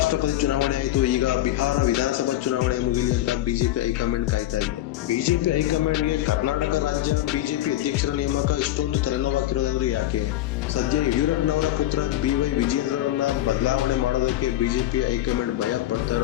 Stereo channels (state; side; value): quieter; right; 14.2 dB